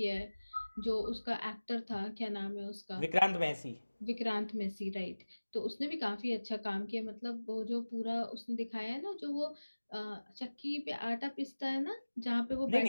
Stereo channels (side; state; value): both; inverted; correlation -1.00